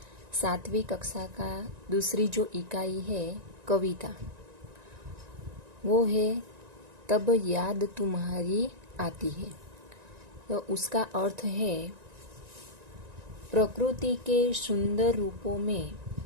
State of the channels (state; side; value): late; left; 1.9 ms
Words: 7वीं कक्षा का दूसरी जो इकाई है कविता, वो है तब याद तुम्हारी आती है। तो उसका अर्थ है, प्रकृति के सुंदर रूपों में